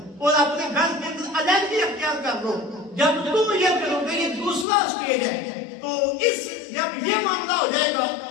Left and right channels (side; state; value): right; drops out; at 4.7 s